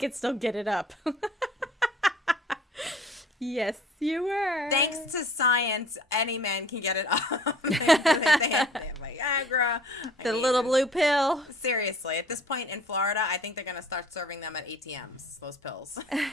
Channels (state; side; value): normal; both; correlation 0.50